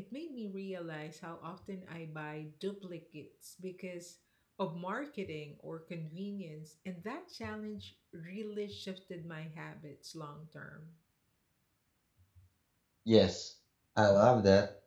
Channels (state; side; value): identical; both; correlation 1.00